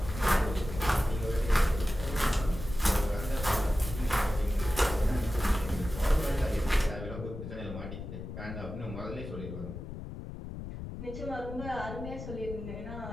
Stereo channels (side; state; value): left; noise; rumble, 9 dB below the sound